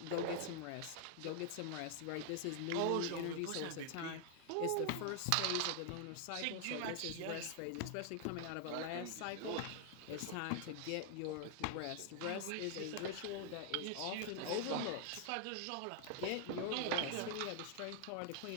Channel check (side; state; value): both; different; correlation 0.00